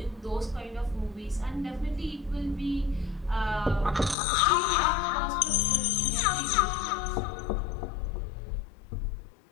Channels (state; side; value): drops out; right; at 4.2 s